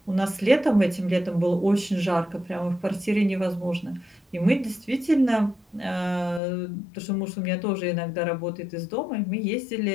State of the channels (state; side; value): drops out; right; at 6.4 s